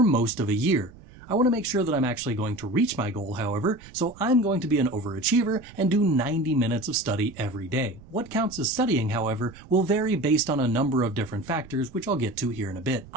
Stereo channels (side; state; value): right; noise; rumble, 20 dB below the sound